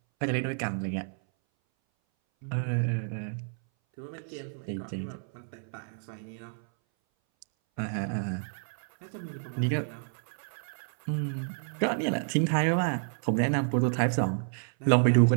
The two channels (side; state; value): left; silent; 58 dB below the other